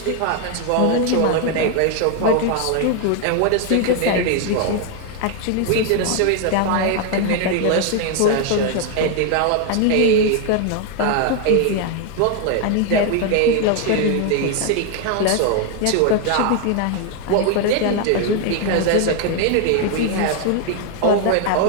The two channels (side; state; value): both; different; correlation 0.01